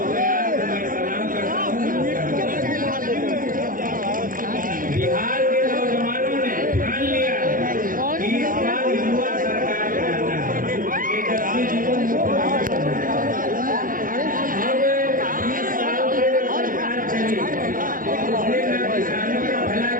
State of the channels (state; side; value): late; left; 0.40 ms